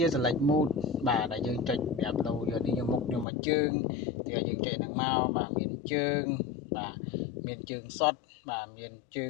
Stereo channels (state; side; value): drops out; right; at 3.2 s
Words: ា select mode បាទដែលយើងចុចប្រាប់ដូរយកនេះយកមុខយកមកជើងទីឲ្យយើងចុចហ្នឹងមកបាទមានជើងបាទមានជើងសុតបាទមានជើ